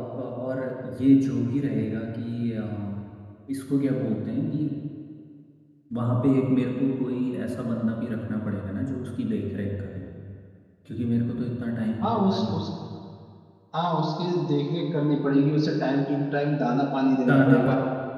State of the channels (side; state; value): both; identical; correlation 1.00